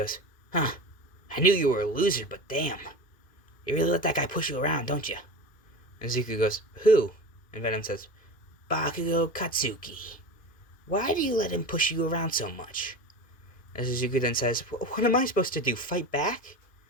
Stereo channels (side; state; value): right; late; 1.9 ms